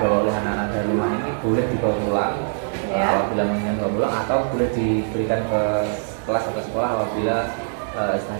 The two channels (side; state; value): left; silent; digital silence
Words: oleh anak-anak dari rumah ini boleh dibawa pulang apabila menginginkan dibawa pulang, atau boleh diberikan ke kelas atau sekolah apabila